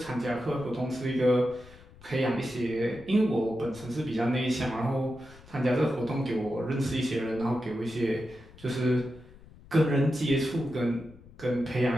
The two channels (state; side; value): noise; left; rumble, 22 dB below the sound